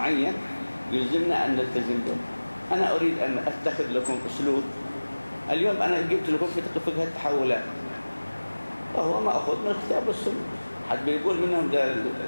يلزمنا أن نلتزم به. أنا أريد أن أتخذ لكم أسلوب. اليوم أنا جبت لكم في فقه التحولات، وهو ما أخذ من الكتاب والسنة. حد بيقول منهم ده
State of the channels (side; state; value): both; inverted; correlation -1.00